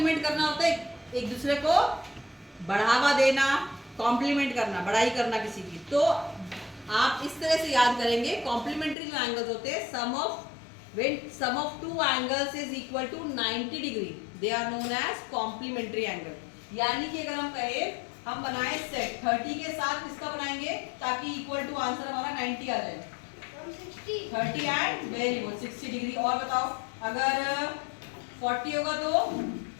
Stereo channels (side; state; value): right; drops out; at 9.0 s